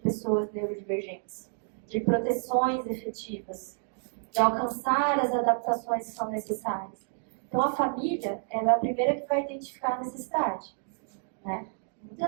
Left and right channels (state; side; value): silent; left; digital silence